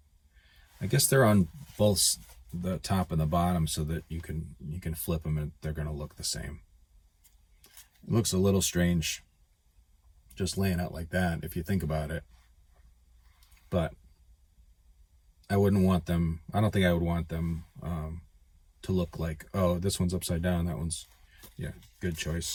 I guess they're on both the top and the bottom so that you can flip them and they're going to look the same. It looks a little strange just laying out like that if you think about it, but I wouldn't want them, I don't think I would want them to look like, oh, this one's upside down, that one's, yeah, good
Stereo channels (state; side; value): identical; both; correlation 1.00